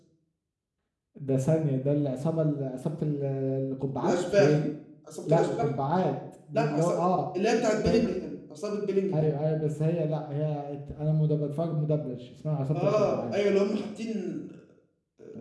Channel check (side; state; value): both; identical; correlation 1.00